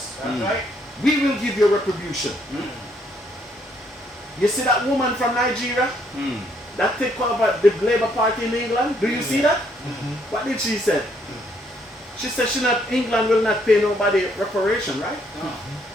That's right. We will give you retribution. You see that woman from Nigeria that take over the Labour Party in England? Do you see that? What did she say? She said England will not pay nobody reparation, right?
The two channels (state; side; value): normal; both; correlation 0.70